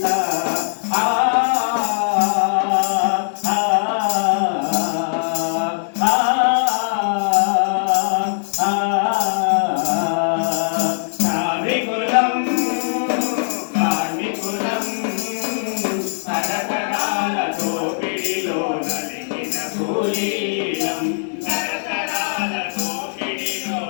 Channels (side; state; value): right; silent; 66 dB below the other